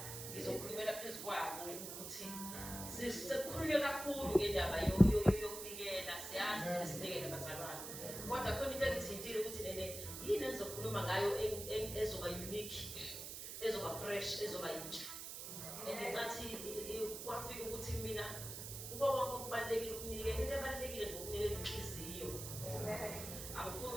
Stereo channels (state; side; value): noise; right; hiss, 8 dB below the sound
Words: ngizokhulumela phezu kwabo ukuthi sekukhulunywe kakhulu ngendaba yokunikela siyazi sinikele abazalwane. Kodwa khona into engithintile ukuthi nene yini engizokhuluma ngayo ezoba unique, ezoba fresh, ezoba yintsha. Ngencathi kwafika ukuthi mina kuba konke okubalulekile ukunikela, into ebalulekile ngokunikela inhliziyo. Angifuni